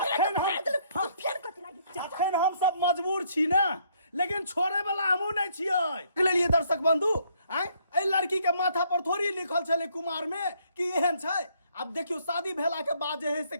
फेर कथि लागी अखन हम सब मजबूर छी ना लेकिन छोड़े वाला हमहू नहीं छियै लेलिए दर्शक बंधु आय ए लड़की के माथा पर थोड़ी लिखल छले कुमार में कि एहन छै अब देखियो शादी भेला के बाद जे है से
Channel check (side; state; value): both; inverted; correlation -0.67